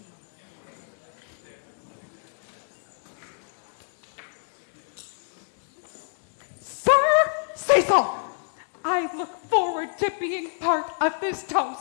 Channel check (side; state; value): right; silent; digital silence